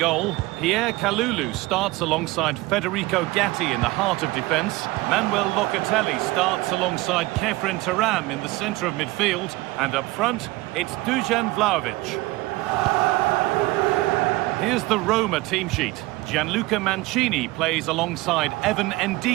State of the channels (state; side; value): quieter; left; 20.3 dB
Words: Pierre Kalulu starts alongside Federico Gatti in the heart of defence. Manuel Locatelli starts alongside Kefren Turam in the centre of midfield. And up front, it's Dusan Vlahovic. Here's the Roma team sheet. Gianluca Mancini plays alongside Evan